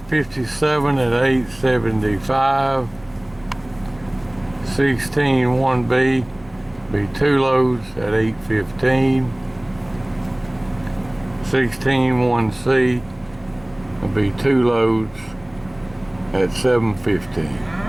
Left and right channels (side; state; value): right; noise; hum, 26 dB below the sound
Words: at 875. 16-1B be two loads at 815. 16-1C will be two loads at 715.